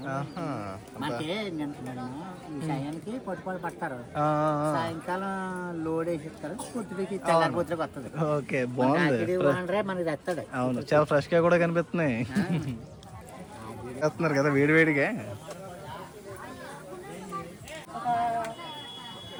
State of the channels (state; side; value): identical; both; correlation 1.00